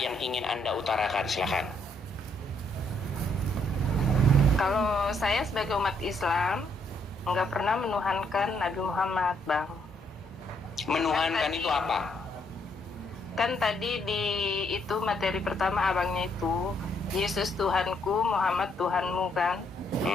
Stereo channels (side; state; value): both; normal; correlation 0.71